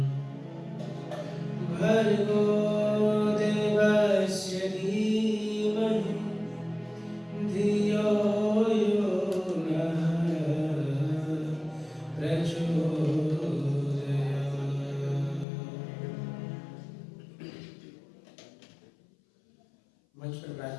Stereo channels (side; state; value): right; drops out; at 15.5 s